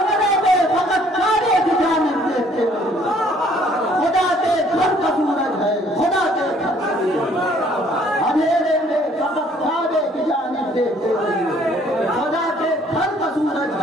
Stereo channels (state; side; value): normal; both; correlation 0.60